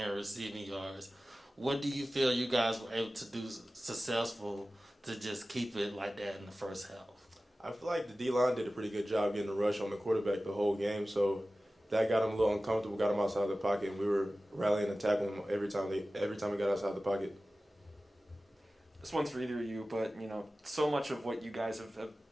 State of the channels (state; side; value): normal; both; correlation 0.96